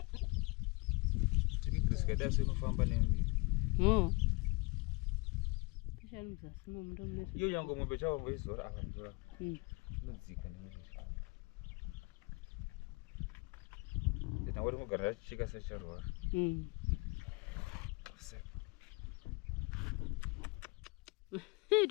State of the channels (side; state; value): right; quieter; 28.5 dB